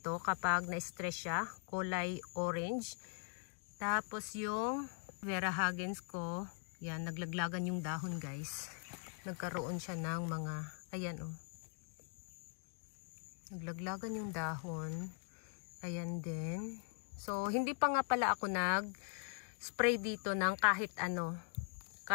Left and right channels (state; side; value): silent; right; 50 dB below the other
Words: kapag na-stress siya. Kulay orange. Tapos yung Vera Hagens ko, yan, naglaglagan yung dahon guys. Nagkaroon siya ng mga, ayan oh. Naglaglagan yung dahon. Ayan din. So, hindi pa nga pala ako nag-spray dito ng kahit ano.